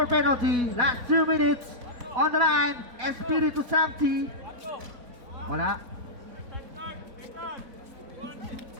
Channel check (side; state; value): left; late; 4.1 ms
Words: penalty. Last 2 minutes. On the line, Espiritu Santi. Wala.